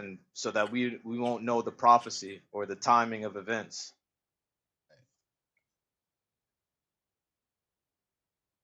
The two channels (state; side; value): identical; both; correlation 1.00